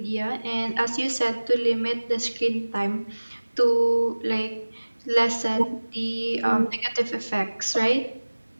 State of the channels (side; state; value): both; inverted; correlation -1.00